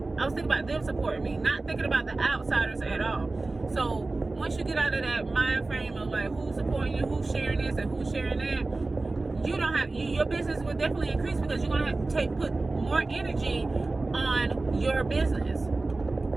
was thinking about them supporting me, not thinking about the outsiders at all. So once you get out of that mind frame of like who's supporting you, who's sharing this and who's sharing that, you don't have your business will definitely increase, because you're gonna have to put more energy on your business.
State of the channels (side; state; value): left; quieter; 3.3 dB